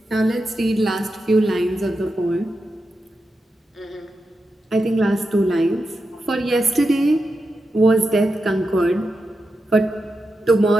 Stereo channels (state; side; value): normal; both; correlation 0.89